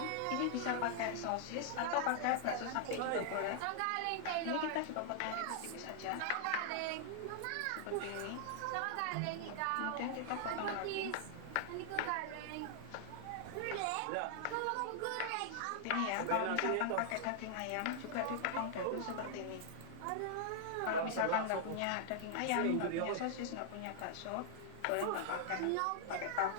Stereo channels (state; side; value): different; both; correlation -0.01